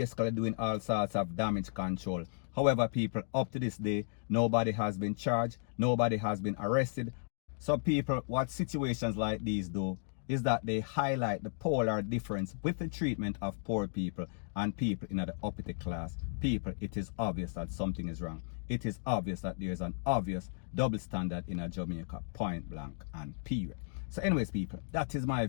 doing all sorts of damage control. However, people, up to this day, nobody has been charged, nobody has been arrested. So people, what situations like these do is that they highlight the polar difference with the treatment of poor people and people in the uppity class. People, it is obvious that something is wrong. It is obvious that there is an obvious double standard in a Jamaica, point blank and period. So anyways, people, that is my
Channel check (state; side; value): silent; right; digital silence